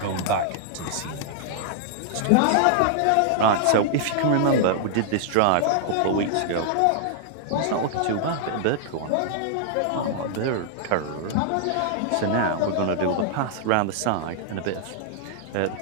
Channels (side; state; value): both; different; correlation -0.01